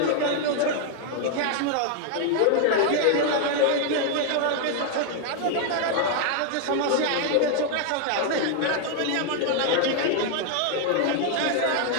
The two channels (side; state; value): both; different; correlation 0.00